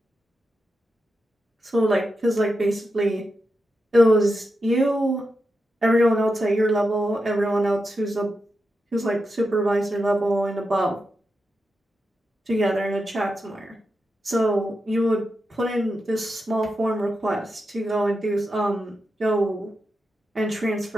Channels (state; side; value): normal; both; correlation 0.88